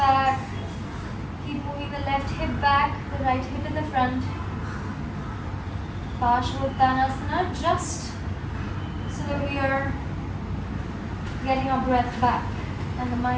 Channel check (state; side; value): identical; both; correlation 1.00